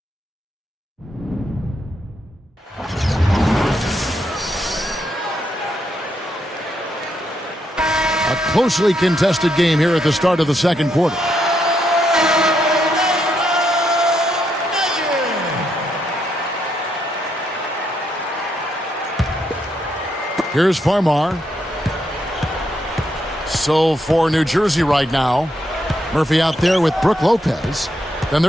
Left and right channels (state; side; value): normal; both; correlation 0.78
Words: A closely contested game here at the start of the second quarter. Here's Farmar. So for New Jersey right now, Murphy out there with Brook Lopez. Then